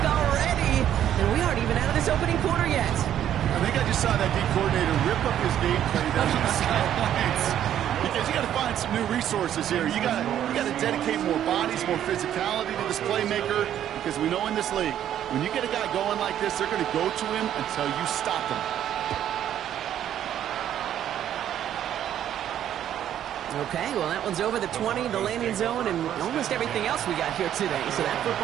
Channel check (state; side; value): quieter; left; 10.7 dB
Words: already. And we aren't even out of this opening quarter yet. I think I just saw that D coordinator rip up his gameplay down on the sidelines. Because you got to find some new resources here. You got to dedicate more bodies, more physicality to this playmaker. Because we know in this league, when you get a guy going like this, they're going to go to him until you stop him. Okay, well, that one's over the 20, the landing zone, and almost everything else we got here today. So that